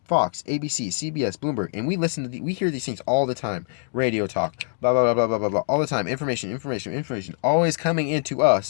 Fox, ABC, CBS, Bloomberg, and we hear these things all the time. Radio talk, blah blah blah blah blah blah blah, all the time. Information, always coming into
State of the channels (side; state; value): right; silent; digital silence